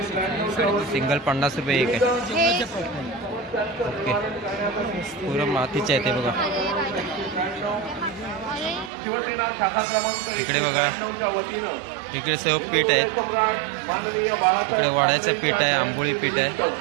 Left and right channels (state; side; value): drops out; left; at 8.9 s